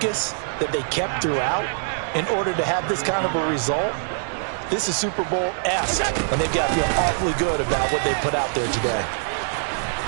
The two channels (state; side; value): silent; left; digital silence